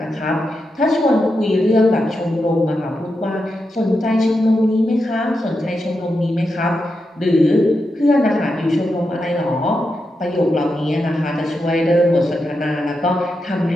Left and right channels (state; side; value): normal; both; correlation 0.87